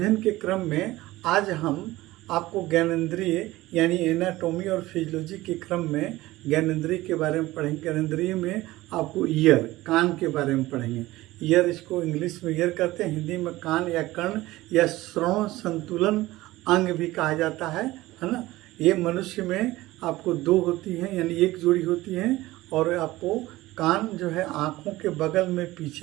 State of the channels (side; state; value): left; quieter; 18.0 dB